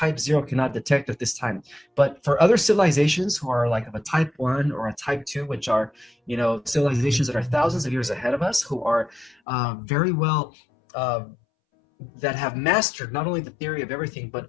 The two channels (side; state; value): right; drops out; at 9.3 s